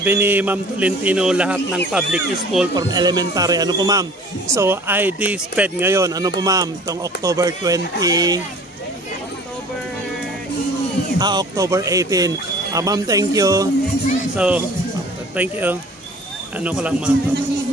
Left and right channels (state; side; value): normal; both; correlation 0.47